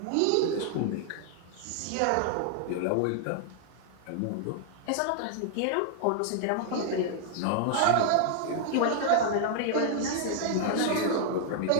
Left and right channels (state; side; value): different; both; correlation 0.00